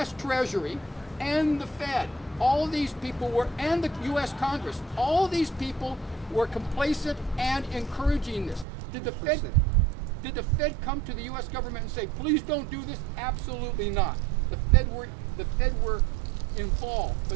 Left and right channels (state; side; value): drops out; left; at 8.7 s